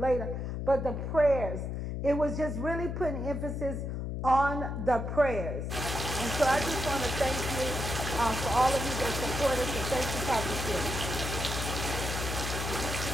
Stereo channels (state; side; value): noise; left; hum, 3 dB below the sound